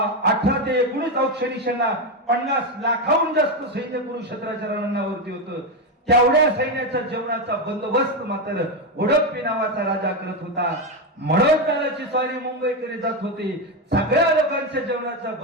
18 ते 19 औक्षणी सेना, 50 लाखाहून जास्त सैन्य कुरुक्षेत्राच्या रणांगणावरती होतं. तेवढ्या सैन्याच्या जेवणाचा बंदोबस्त मात्र उडप्पी नावाचा राजा करत होता. मनोजदादाची स्वारी मुंबईकडे जात होती, सगळ्या लोकांच्या जेवणाचा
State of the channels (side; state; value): both; normal; correlation 0.10